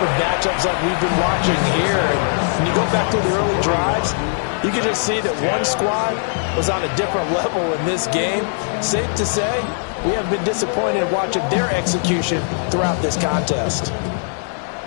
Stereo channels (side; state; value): right; silent; 63 dB below the other